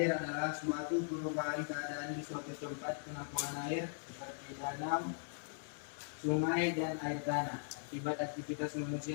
adalah suatu perubahan keadaan di suatu tempat penampungan air seperti danau, sungai, dan air tanah akibat aktivitas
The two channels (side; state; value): right; silent; 51 dB below the other